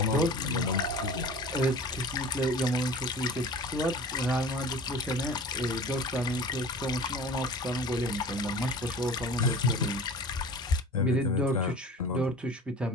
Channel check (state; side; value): normal; both; correlation 0.40